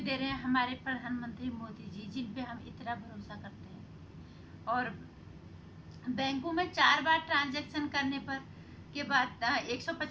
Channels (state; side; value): identical; both; correlation 1.00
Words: दे रहे हैं हमारे प्रधानमंत्री मोदी जी, जिन पे हम इतना भरोसा करते हैं। और बैंकों में 4 बार ट्रांजैक्शन करने पर के बाद